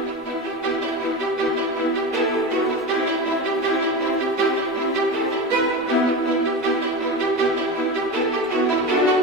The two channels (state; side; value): normal; both; correlation 0.24